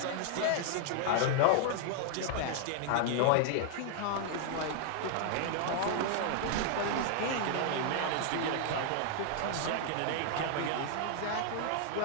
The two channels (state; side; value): different; both; correlation 0.00